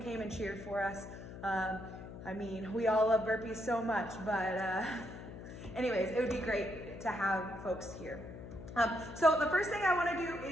and cheered for us. I mean, we all love burpees so much, but anyways, it would be great to have folks here. So the first thing I want to do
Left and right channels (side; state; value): left; noise; hum, 12 dB below the sound